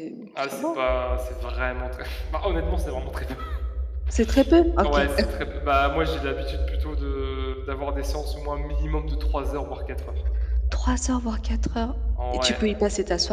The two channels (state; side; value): identical; both; correlation 1.00